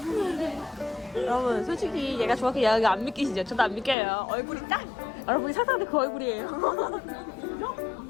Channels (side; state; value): right; drops out; at 4.0 s